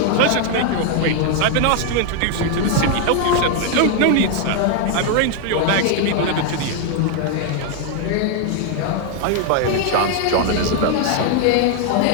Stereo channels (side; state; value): both; different; correlation 0.00